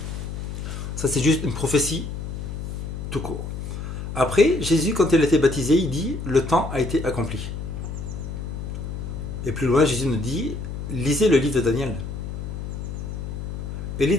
Ça, c'est juste une prophétie tout court. Après, Jésus, quand il a été baptisé, il dit: le temps a été accompli. Et plus loin, Jésus nous dit: lisez le livre de Daniel. Et le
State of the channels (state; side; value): noise; left; hum, 6 dB below the sound